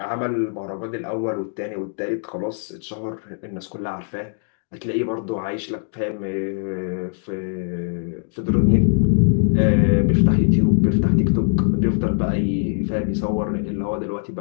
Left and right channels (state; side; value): silent; right; 64 dB below the other